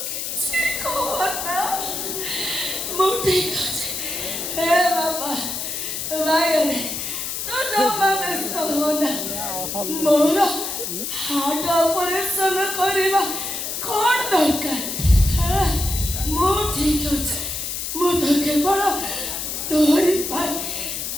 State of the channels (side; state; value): left; noise; hiss, 4 dB below the sound